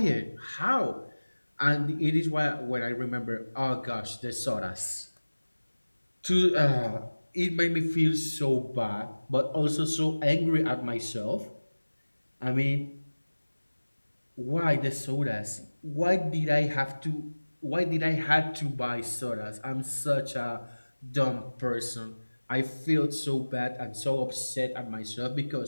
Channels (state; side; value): inverted; both; correlation -1.00